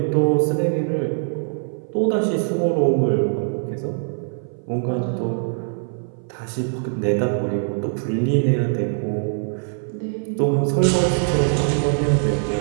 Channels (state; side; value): silent; left; 62 dB below the other